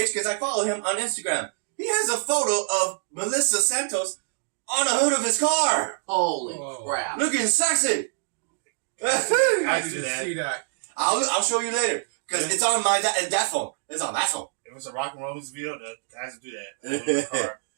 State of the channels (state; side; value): silent; left; digital silence